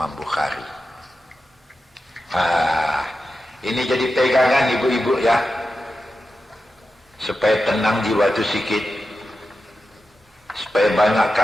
Bukhari. Ini jadi pegangan ibu-ibu ya, supaya tenang jiwa itu sikit. Supaya banyak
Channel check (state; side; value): normal; both; correlation 0.91